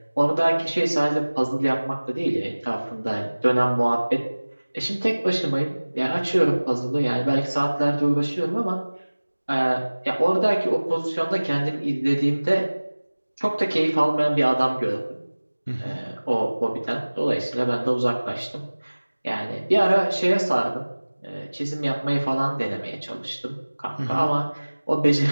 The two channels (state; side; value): inverted; both; correlation -1.00